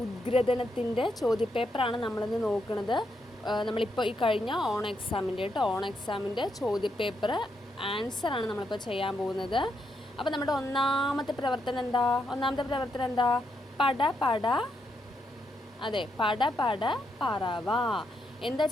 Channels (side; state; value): both; normal; correlation 0.80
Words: ഉദ്ഗ്രഥനത്തിൻ്റെ ചോദ്യപേപ്പറാണ് നമ്മളിന്ന് നോക്കുന്നത്. നമ്മളിപ്പോൾ ഈ കഴിഞ്ഞ ഓൺ എക്സാമിൻ്റെ ചോദ്യപേപ്പർ ആൻസറാണ് നമ്മളിപ്പോൾ ചെയ്യാൻ പോകുന്നത്. അപ്പോൾ നമ്മുടെ ഒന്നാമത്തെ പ്രവർത്തനം എന്താ? പട പട പറവ. എന്താ